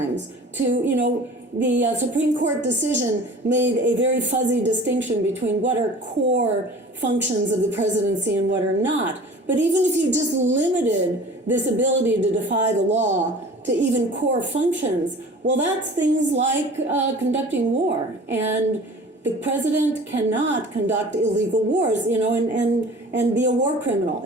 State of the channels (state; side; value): normal; both; correlation 0.43